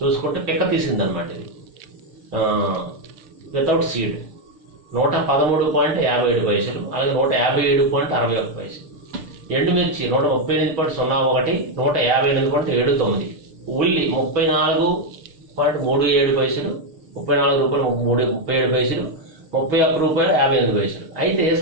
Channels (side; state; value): left; late; 6.7 ms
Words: చూసుకుంటే పిక్క తీసింది అనమాట. ఇది వితౌట్ సీడ్ 113.57 పైసలు, అలాగే 157.61 పైసలు. ఎండుమిర్చి 138.01, 158.79. ఉల్లి 34.37 పైసలు, 34 రూపాయలు 37 పైసలు, 31 రూపాయలు 58 పైసలు. అయితే